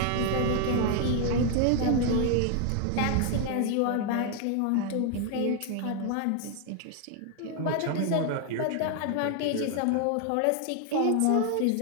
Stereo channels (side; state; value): both; different; correlation 0.00